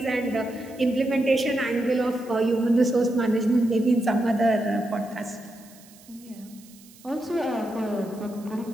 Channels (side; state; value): right; noise; hiss, 24 dB below the sound